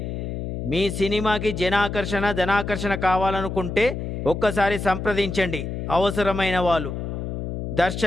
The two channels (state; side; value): noise; left; hum, 5 dB below the sound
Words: మీ సినిమాకి జనాకర్షణ ధనాకర్షణ కావాలనుకుంటే ఒక్కసారి సంప్రదించండి అవసరమైన వాళ్ళు,